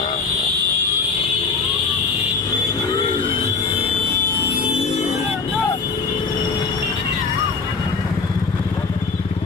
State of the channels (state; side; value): quieter; right; 4.8 dB